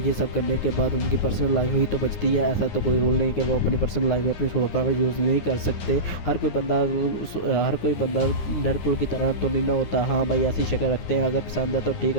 ये सब करने के बाद उनकी पर्सनल लाइफ ही तो बचती है। ऐसा तो कोई रूल नहीं कि वो अपनी पर्सनल लाइफ में अपनी सुपर पावर यूज़ नहीं कर सकते। हर कोई बंदा डेडपुल की तरह तो नहीं ना होता। हाँ भाई, ऐसी शक्ल रखते हैं, अगर पसंद है तो ठीक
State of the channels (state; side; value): late; right; 9.8 ms